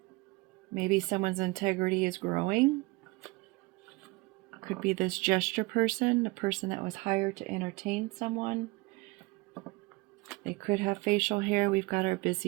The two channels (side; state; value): left; quieter; 24.0 dB